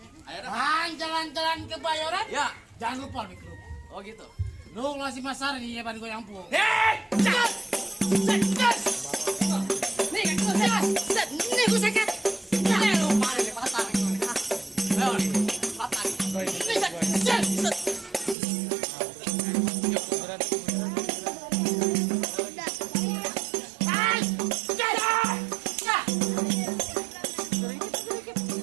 Bang, jalan-jalan ke Bayoran. Ya, Jangan lupa mikro. oh gitu. Lu ngasih masar nih ya ban gue yang pung. Nih gue sakit. Lu mana nih patah? Ayo, patah.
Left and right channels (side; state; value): left; drops out; at 18.4 s